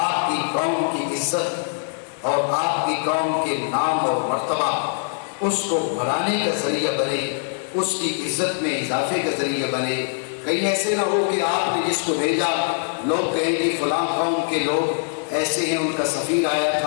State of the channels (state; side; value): silent; right; 62 dB below the other